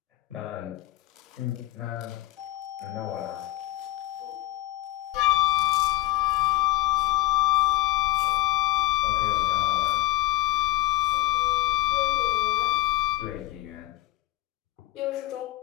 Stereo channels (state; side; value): quieter; right; 17.0 dB